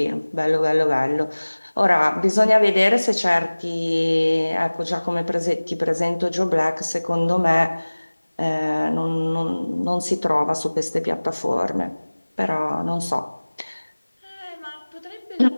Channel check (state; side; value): inverted; both; correlation -1.00